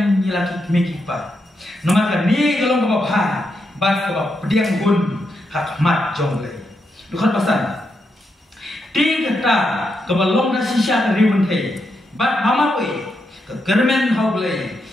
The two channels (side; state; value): both; normal; correlation 0.83